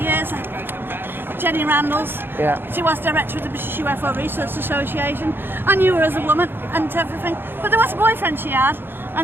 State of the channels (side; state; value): left; late; 0.10 ms